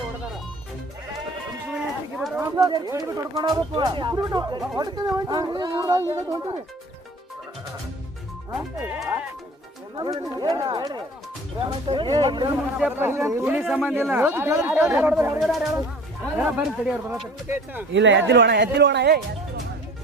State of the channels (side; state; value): both; normal; correlation 0.45